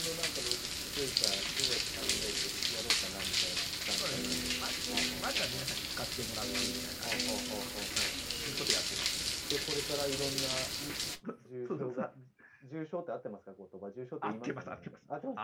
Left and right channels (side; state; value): both; identical; correlation 1.00